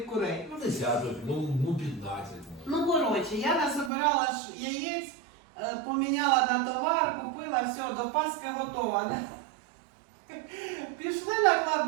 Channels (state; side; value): drops out; left; at 3.9 s